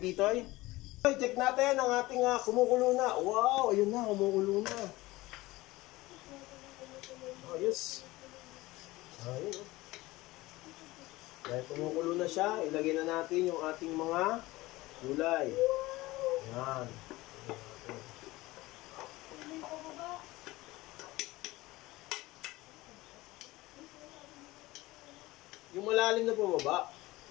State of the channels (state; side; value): quieter; right; 19.5 dB